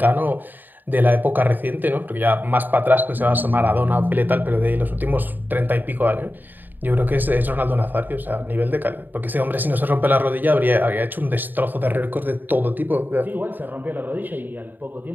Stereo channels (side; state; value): left; late; 0.089 ms